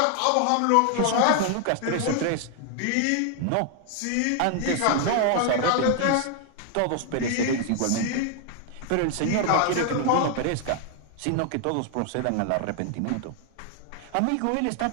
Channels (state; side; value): different; both; correlation 0.00